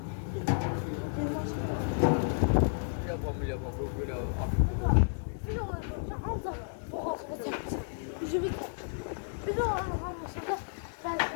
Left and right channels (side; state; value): right; silent; digital silence